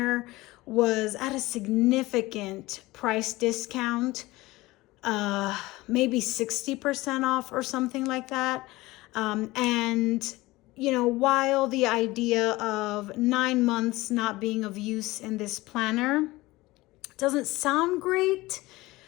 was at a significant price discount, maybe 60% off or something like that. And while the idea of 9 months not being of use in this planner doesn't sound great,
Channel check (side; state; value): right; quieter; 19.8 dB